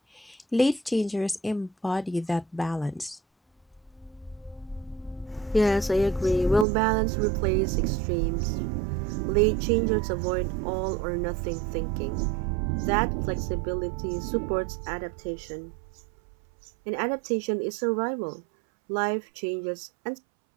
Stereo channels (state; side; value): drops out; left; at 6.7 s